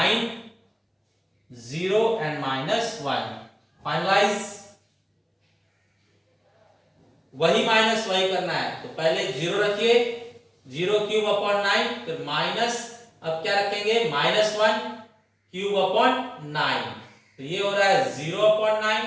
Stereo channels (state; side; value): identical; both; correlation 1.00